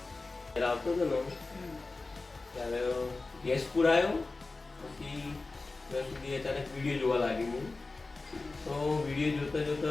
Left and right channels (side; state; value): right; quieter; 3.5 dB